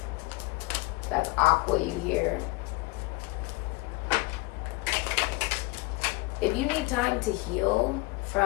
That's Aqua you here. If you need time to heal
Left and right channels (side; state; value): right; quieter; 23.5 dB